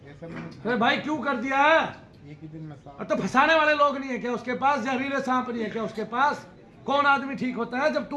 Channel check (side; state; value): both; identical; correlation 1.00